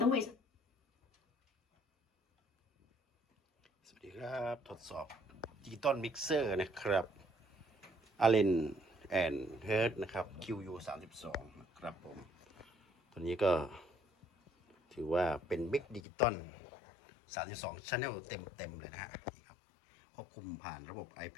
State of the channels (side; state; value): right; drops out; at 16.0 s